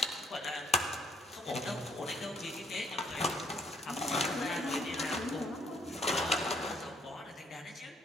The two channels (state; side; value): normal; both; correlation 0.67